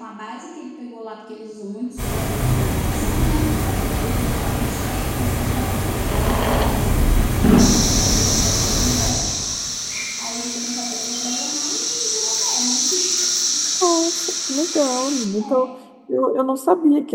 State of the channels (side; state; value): both; identical; correlation 1.00